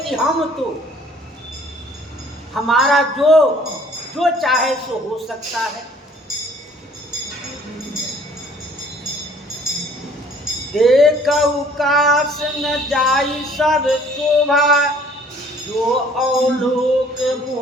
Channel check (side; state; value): both; normal; correlation 0.56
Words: हम तो हमारा जो चाहे सो हो सकता है। देखऊ काश न जाई सब शोभा, जो अवलोक